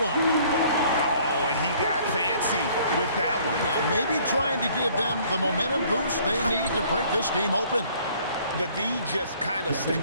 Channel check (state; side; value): inverted; both; correlation -0.58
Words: Oh, and he got fancy with that one. Yeah, maybe trying to give them the momentum boost they need to break this game open. The D just kind of